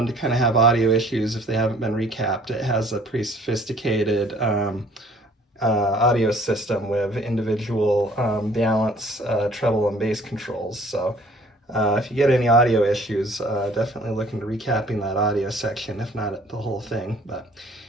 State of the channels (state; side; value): normal; both; correlation 0.56